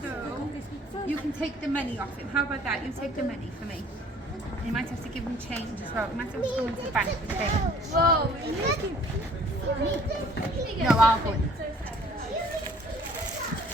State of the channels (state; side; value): normal; both; correlation 0.55